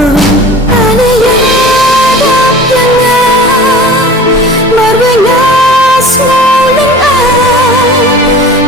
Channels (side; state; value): both; normal; correlation 0.40